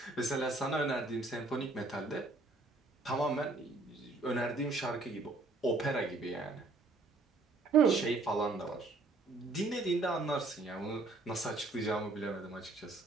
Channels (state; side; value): quieter; left; 3.4 dB